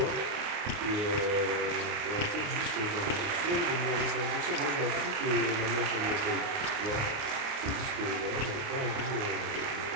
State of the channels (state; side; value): late; left; 29 ms